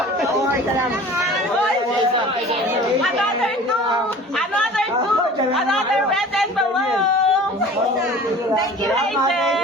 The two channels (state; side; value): normal; both; correlation 0.43